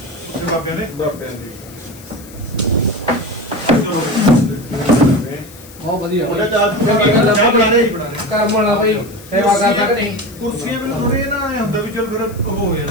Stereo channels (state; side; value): noise; left; hiss, 21 dB below the sound